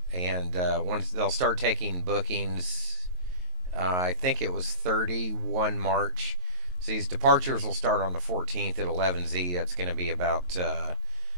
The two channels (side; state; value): left; late; 22 ms